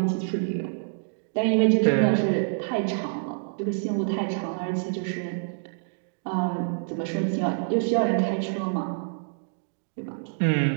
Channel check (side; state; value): left; silent; digital silence